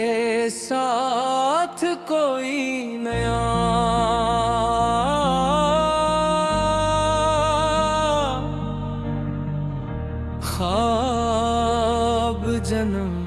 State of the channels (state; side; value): identical; both; correlation 1.00